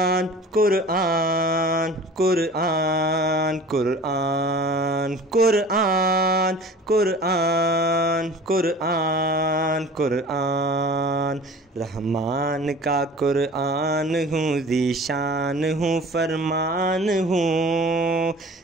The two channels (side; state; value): both; normal; correlation 0.42